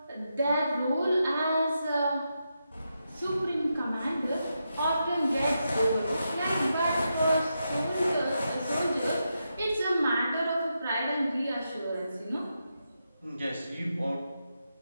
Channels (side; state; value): both; inverted; correlation -0.86